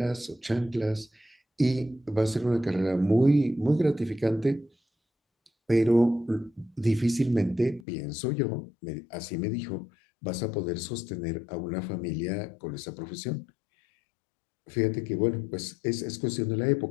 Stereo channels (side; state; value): right; drops out; at 7.9 s